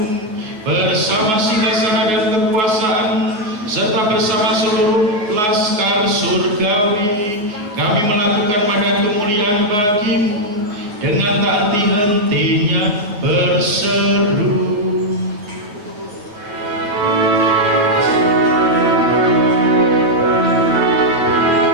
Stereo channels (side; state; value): left; late; 9.4 ms